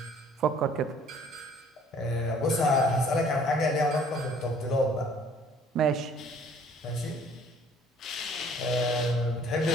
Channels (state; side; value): normal; both; correlation 0.56